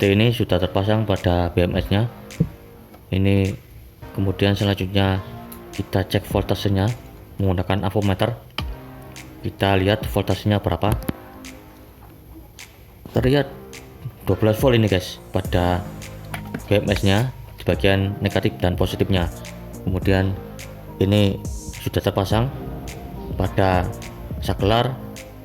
ini sudah terpasang pada BMS nya ini. Kemudian selanjutnya kita cek voltasenya menggunakan avometer. Kita lihat voltasenya berapa. Terlihat 12 volt ini guys pada BMS nya di bagian negatif dan positifnya. Kemudian ini sudah terpasang pada saklar,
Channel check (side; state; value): both; identical; correlation 1.00